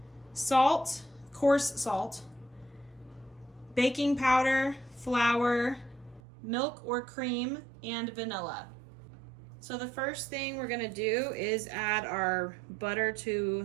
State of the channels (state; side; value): drops out; left; at 6.2 s